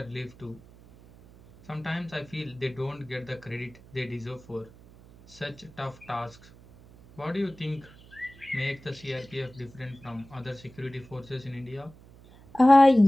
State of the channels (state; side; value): noise; right; hum, 22 dB below the sound